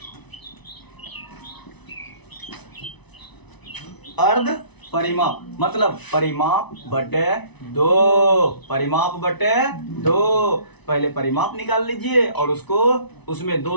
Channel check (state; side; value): late; right; 1.0 ms